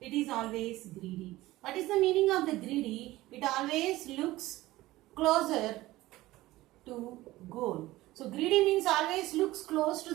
is always greedy. What is the meaning of the greedy? It always looks closer to goal. So greedy means always looks close to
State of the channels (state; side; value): quieter; left; 17.5 dB